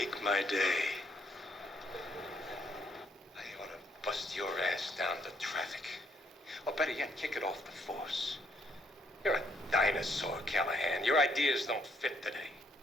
my day. I ought to bust your ass down to traffic. Or better yet, kick it off the force. You're a dinosaur, Callahan. Your ideas don't fit today.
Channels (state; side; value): normal; both; correlation 0.70